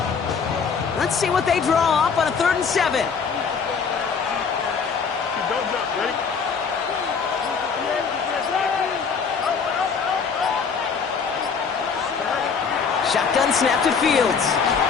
Let's see what they draw up on a 3rd and 7. Shotgun snap to Fields.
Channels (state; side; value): quieter; right; 5.8 dB